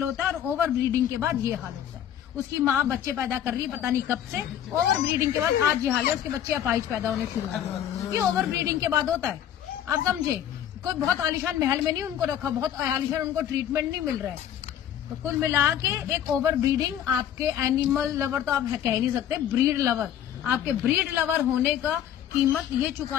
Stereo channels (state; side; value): quieter; right; 10.3 dB